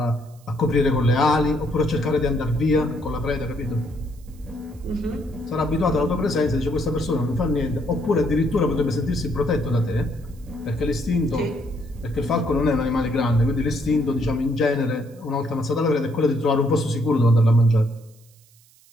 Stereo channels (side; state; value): right; noise; hiss, 29 dB below the sound